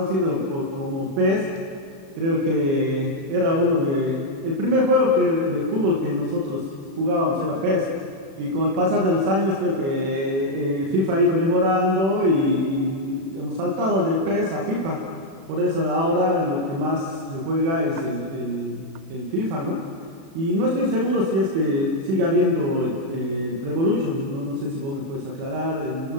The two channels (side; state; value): left; late; 36 ms